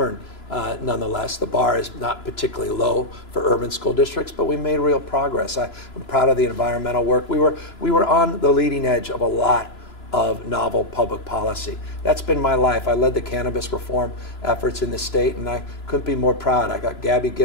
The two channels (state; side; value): late; right; 3.0 ms